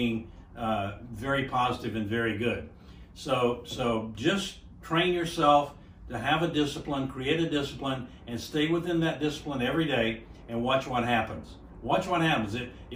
very positive and very good. So just train yourself to have a discipline, create a discipline, and stay within that discipline every day and watch what happens. Watch what happens.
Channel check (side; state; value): both; identical; correlation 1.00